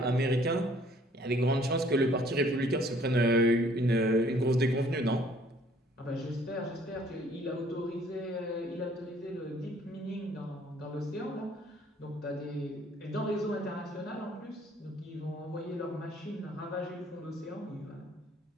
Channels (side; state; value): both; normal; correlation 0.59